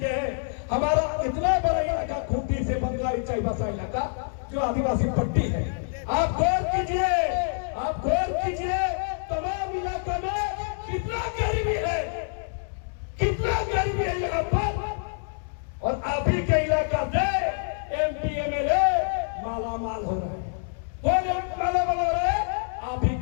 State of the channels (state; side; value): silent; right; digital silence